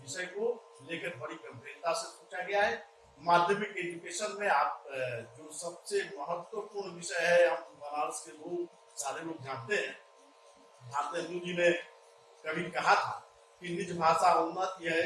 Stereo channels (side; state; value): both; identical; correlation 1.00